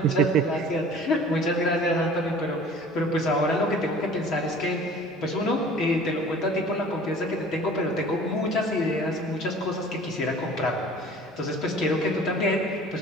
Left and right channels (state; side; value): normal; both; correlation 0.47